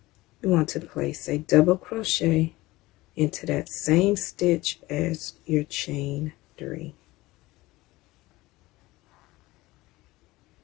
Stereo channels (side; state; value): right; quieter; 19.4 dB